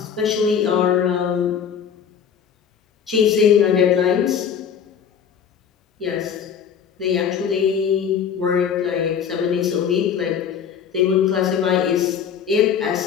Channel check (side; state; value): right; quieter; 7.7 dB